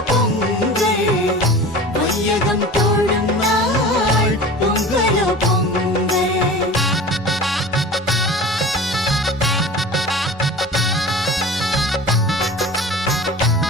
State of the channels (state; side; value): normal; both; correlation 0.37